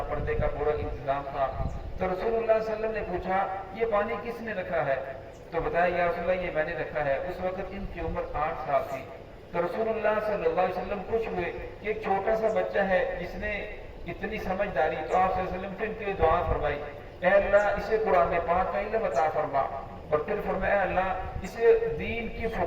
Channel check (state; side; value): identical; both; correlation 1.00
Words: پردے کا پورا انتظام تھا۔ تو رسول اللہ صلی اللہ علیہ وسلم نے پوچھا یہ پانی کس نے رکھا ہے؟ تو بتایا یا رسول اللہ یہ میں نے رکھا ہے۔ اس وقت ان کی عمر 8 سال تھی۔ تو رسول اللہ صلی اللہ علیہ وسلم خوش ہوئے کہ ایک چھوٹا سا بچہ ہے جس نے اتنی سمجھداری، تو آپ صلی اللہ علیہ وسلم پھر ان کے لیے دعا فرمائی، اے اللہ اسے قرآن پاک کا علم عطا فرما، اور پھر فرمایا اللہ اسے دین کی